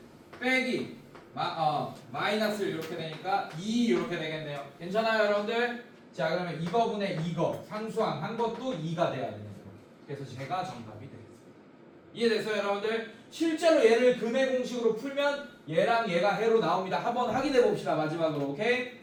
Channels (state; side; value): identical; both; correlation 1.00